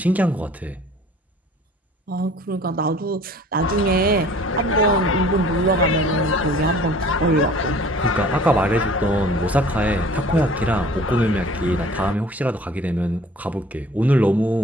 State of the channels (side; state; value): both; normal; correlation 0.49